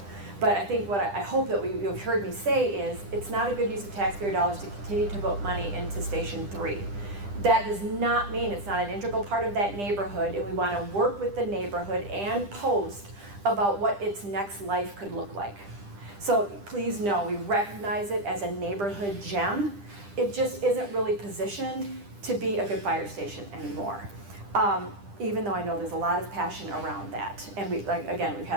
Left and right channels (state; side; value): late; left; 10 ms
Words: But I think what I hope that you've heard me say is it's not a good use of taxpayer dollars to continue to put money into Station 3. That does not mean it's not an integral part of that neighborhood, and we want to work with the neighborhood and post about what its next life could look like. So please know, we recognize it as a neighborhood gem. It just isn't really positioned to be a good fire station anymore. Even though I know there's a lot of passion around that. And we've